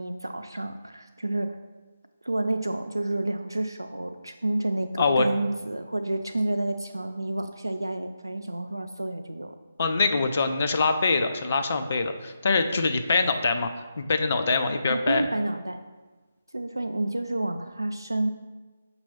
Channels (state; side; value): inverted; both; correlation -0.85